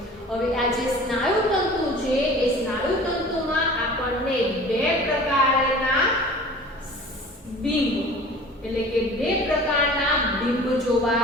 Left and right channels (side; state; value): both; normal; correlation 0.43